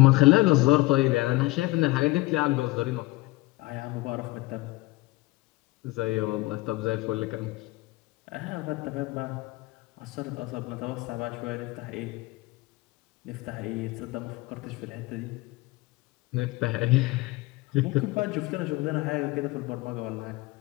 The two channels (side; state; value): right; quieter; 21.0 dB